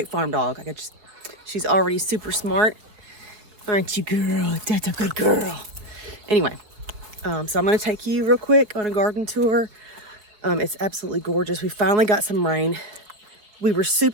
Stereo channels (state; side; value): late; left; 4.5 ms